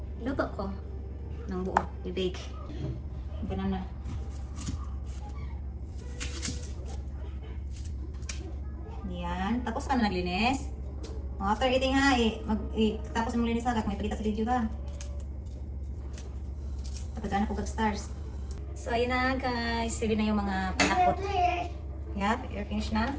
luto ko ng buo. I-bake. Ganun na. Yan. Tapos ka na naglinis. After eating ha, tapos mong linis agad, may palita sa video ka. Patagaan ako stars. So, ayun na guys. Ready na yung mga panakot. Yeah, you're finished na?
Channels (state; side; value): identical; both; correlation 1.00